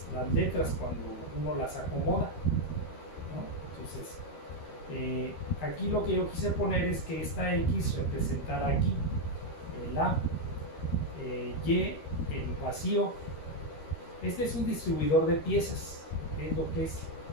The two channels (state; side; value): late; right; 13 ms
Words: letras cuando uno las acomoda, ¿no? Entonces, aquí lo que yo quise poner es que esta X representara aquí el A, Y, el vacío. Este es un distribuidor de piezas, es lo que es